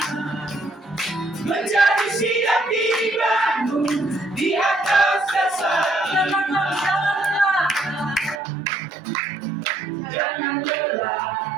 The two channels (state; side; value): drops out; left; at 8.4 s